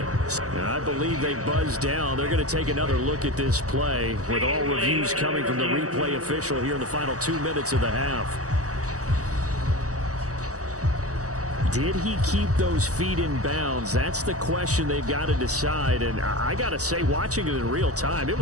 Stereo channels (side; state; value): left; late; 0.66 ms